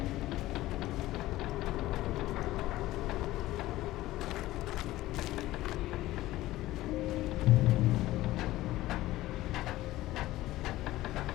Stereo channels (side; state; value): right; quieter; 16.5 dB